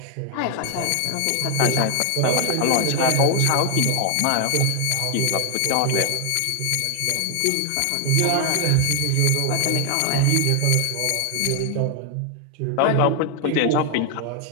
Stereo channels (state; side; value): different; both; correlation 0.00